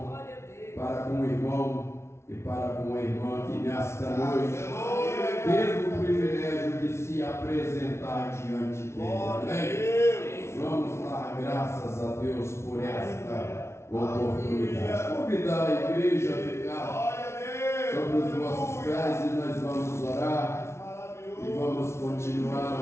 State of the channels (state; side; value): late; right; 0.13 ms